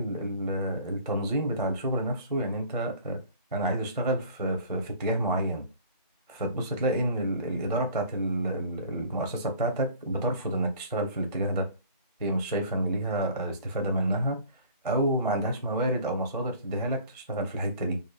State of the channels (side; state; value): both; inverted; correlation -0.48